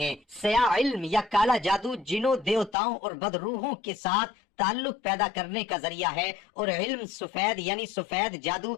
سیاہ علم یا کالا جادو جنوں، دیوتاؤں اور بدروحوں کے ساتھ تعلق پیدا کرنے کا ذریعہ ہے، اور علم سفید یعنی سفید جادو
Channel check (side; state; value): right; drops out; at 2.8 s